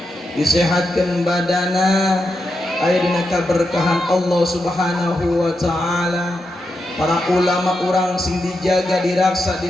disehatkeun badana aya dina kaberkahan Allah Subhanahu wa taala para ulama urang sing dijaga diraksa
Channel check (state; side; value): normal; both; correlation 0.86